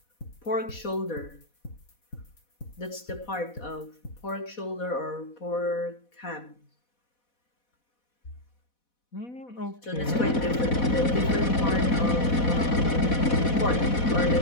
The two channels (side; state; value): right; late; 4.1 ms